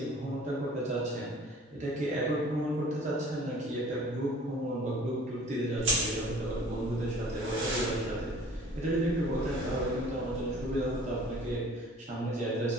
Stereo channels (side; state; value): both; normal; correlation 0.49